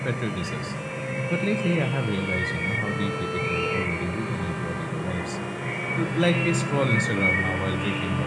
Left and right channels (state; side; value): identical; both; correlation 1.00